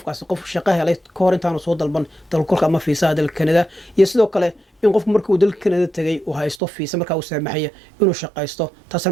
qof shaqo helay ka hor intaanu soo dalban dalkugalka ama fiisaha dalka Canada iyo sidoo kale in qofku markuu dalka Canada tagay uu haysto fiisa markaa uu saamaxaya inuu shaqaysto taasina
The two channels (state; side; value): drops out; left; at 6.6 s